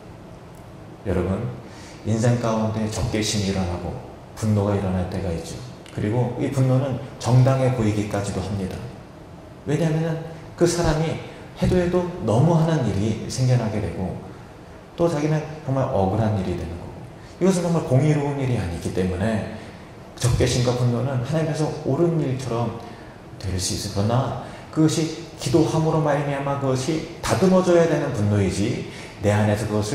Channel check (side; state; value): both; identical; correlation 1.00